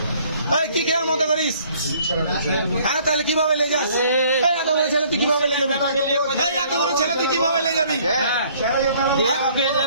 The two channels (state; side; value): inverted; both; correlation -0.59